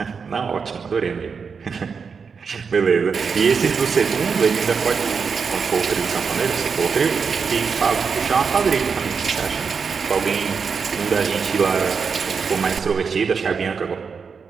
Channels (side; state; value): left; quieter; 5.7 dB